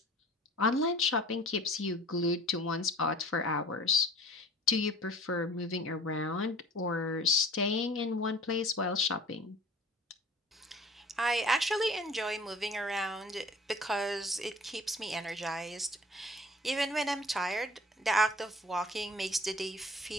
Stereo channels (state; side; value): normal; both; correlation 0.46